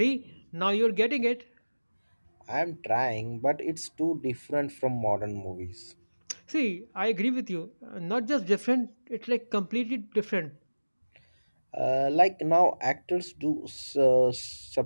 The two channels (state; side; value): inverted; both; correlation -1.00